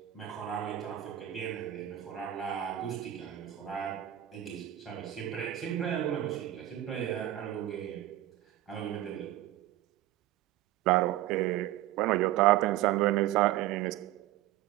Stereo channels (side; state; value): left; quieter; 13.8 dB